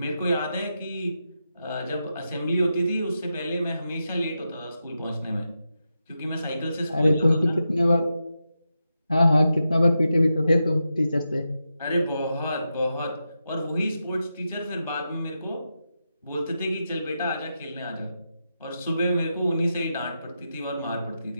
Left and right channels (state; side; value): inverted; both; correlation -0.88